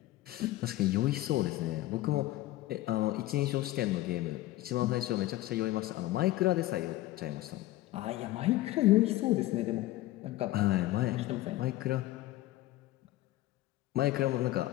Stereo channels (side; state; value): right; quieter; 16.6 dB